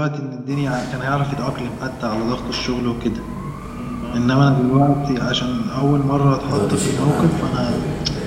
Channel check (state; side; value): identical; both; correlation 1.00